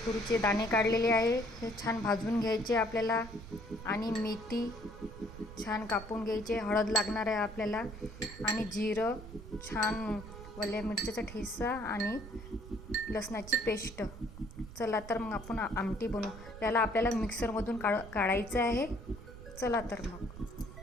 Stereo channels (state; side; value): noise; right; rumble, 14 dB below the sound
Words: तुरीचे दाणे काढलेले आहे, हे छान भाजून घ्यायचे आपल्याला आणि मेथी छान कापून घ्यायचे। हळद लागणार आहे आपल्याला आणि जिरं, छान वल्या मिरच्याचा ठेचा आणि लसणाची पेस्ट। चला तर मग आपण आमटी बनवू। त्याला आपल्याला मिक्सरमधून काढायचं आहे। चला तर मग।